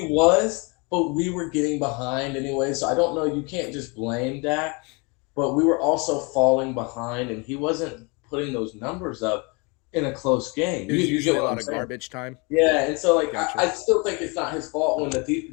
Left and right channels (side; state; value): right; quieter; 30.4 dB